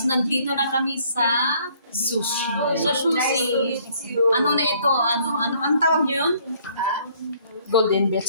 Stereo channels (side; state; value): both; inverted; correlation -0.62